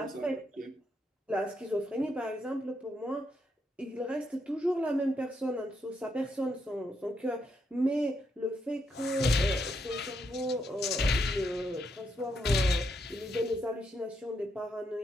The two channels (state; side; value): normal; both; correlation 0.79